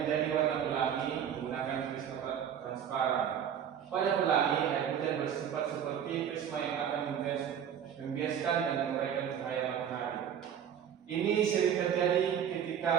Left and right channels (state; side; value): quieter; left; 8.8 dB